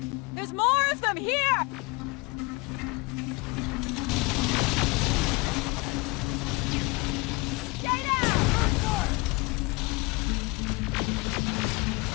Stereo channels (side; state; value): right; quieter; 25.9 dB